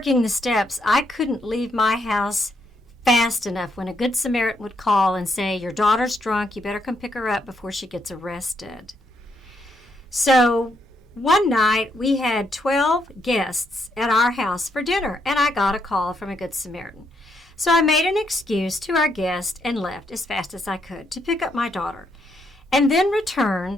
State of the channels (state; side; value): normal; both; correlation 0.76